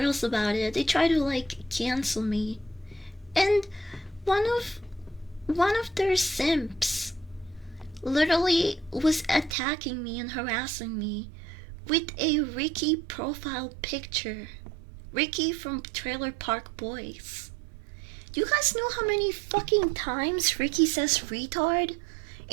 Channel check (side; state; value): left; drops out; at 9.6 s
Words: about it. They tried to like cancel me. And one of their simps literally was attacking me and harassing me with a Ricky profile picture. Ricky from Trailer Park Boys. Do you guys know how many fucking times Ricky says retard